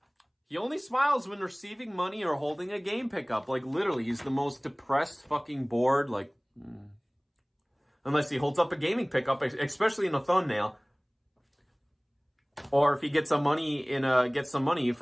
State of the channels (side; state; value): both; identical; correlation 1.00